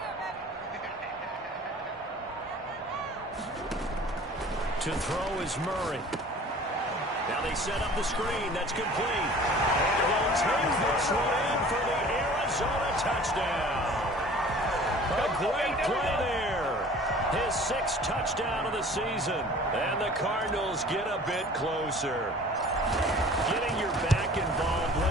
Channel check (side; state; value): both; normal; correlation 0.46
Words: To throw is Murray. Now they set up the screen. That's complete. And he'll take this one in for the Arizona touchdown. A great play there. His 6th touchdown of the season. And the Cardinals get a bit closer. Getting your back involved,